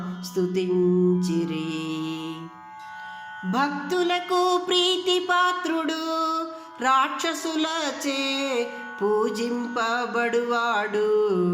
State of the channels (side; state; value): both; identical; correlation 1.00